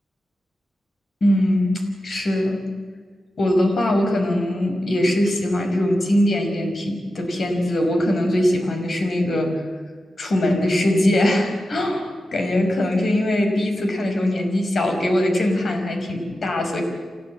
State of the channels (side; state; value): both; normal; correlation 0.91